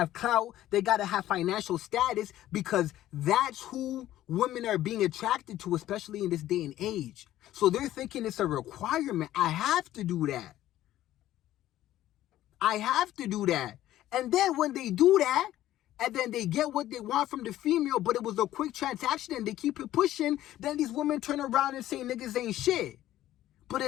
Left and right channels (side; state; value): right; quieter; 13.7 dB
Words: clout, they gotta have financial status because that's who women are being attracted to, especially in this day and age. So they're thinking it's a requirement. I have to do that. I have to do that. And then when they do that, and then they get what they want from the female, but it was a quick transaction and they keep it pushing, then these women turn around and say niggas ain't shit. But